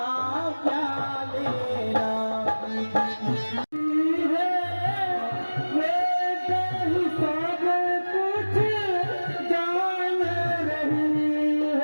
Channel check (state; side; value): inverted; both; correlation -1.00